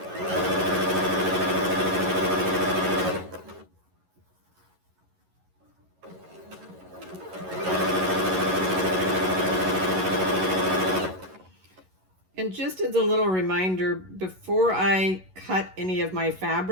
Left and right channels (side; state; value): left; late; 11 ms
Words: And just as a little reminder, before I cut any of my